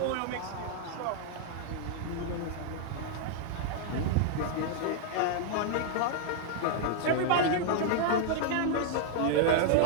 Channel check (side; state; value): both; different; correlation -0.01